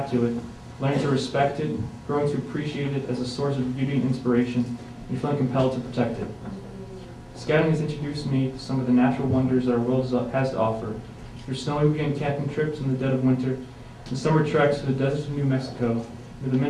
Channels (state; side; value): identical; both; correlation 1.00